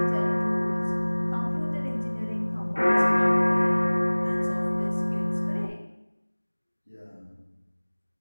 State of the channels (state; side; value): inverted; both; correlation -1.00